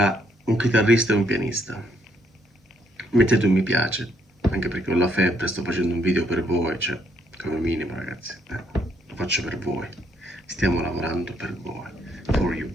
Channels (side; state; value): both; normal; correlation 0.72